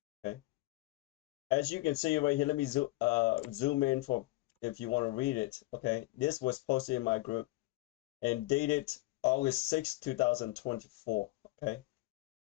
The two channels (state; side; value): quieter; right; 19.8 dB